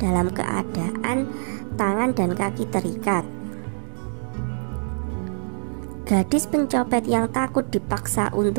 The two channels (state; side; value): silent; left; 62 dB below the other